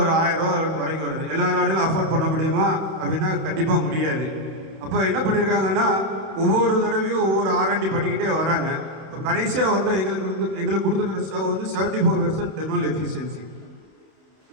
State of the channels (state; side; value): late; left; 31 ms